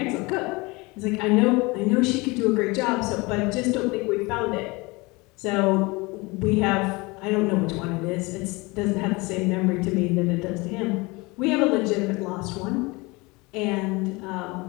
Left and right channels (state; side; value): quieter; right; 24.9 dB